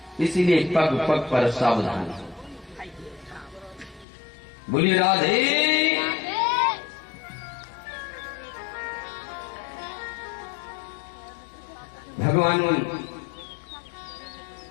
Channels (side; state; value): right; drops out; at 4.0 s